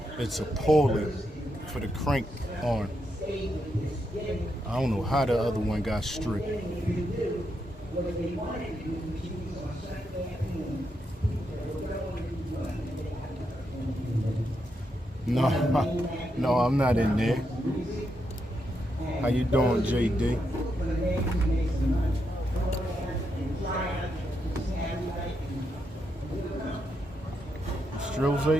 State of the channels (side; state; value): both; normal; correlation 0.82